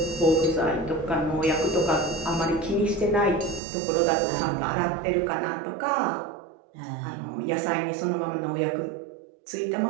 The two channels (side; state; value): left; drops out; at 3.6 s